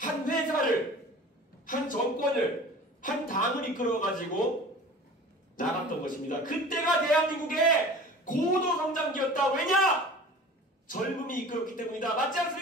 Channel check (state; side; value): normal; both; correlation 0.41